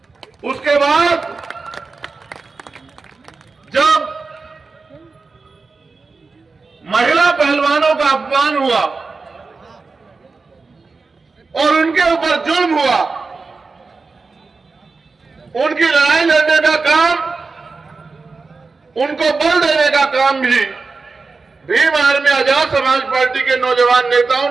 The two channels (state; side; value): quieter; left; 4.2 dB